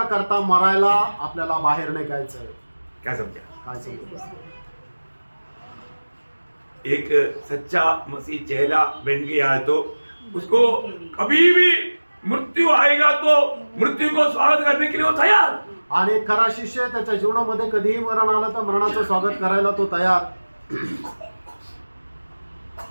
करता मरायला आपल्याला बाहेर निघायचंय. क्या समझा? काय समजलं? एक सच्चा मसीह चेला बन गया है तो उसको कभी भी मृत्यु आएगा तो मृत्यु को स्वागत करने के लिए वो तैयार. आणि एक खरा शिष्य त्याच्या जीवनामध्ये कधीही मरण आलं तर मरणाचं स्वागत करायला तो तयार.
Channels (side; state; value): both; inverted; correlation -1.00